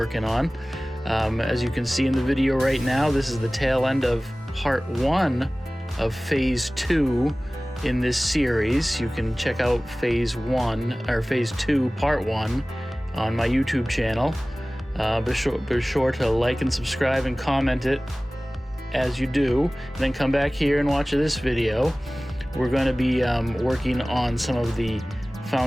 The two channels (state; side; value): normal; both; correlation 0.98